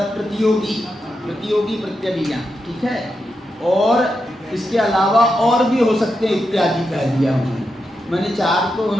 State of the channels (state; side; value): normal; both; correlation 0.86